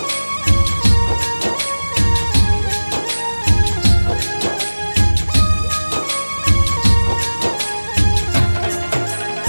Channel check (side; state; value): both; inverted; correlation -1.00